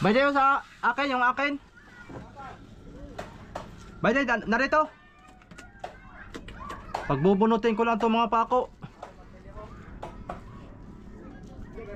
Bayday sa akin, yung akin. Bayday, narito. Pagbubunutin ko lang itong mga pako.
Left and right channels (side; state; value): both; identical; correlation 1.00